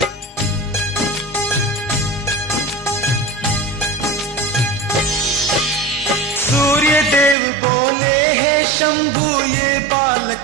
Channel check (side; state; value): left; drops out; at 7.4 s